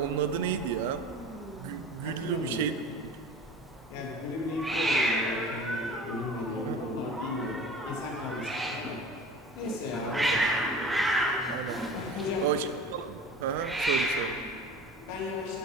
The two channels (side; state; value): both; normal; correlation 0.39